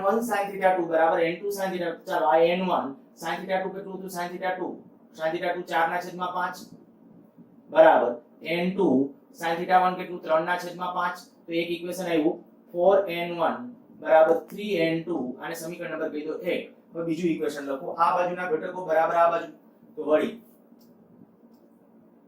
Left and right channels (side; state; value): both; identical; correlation 1.00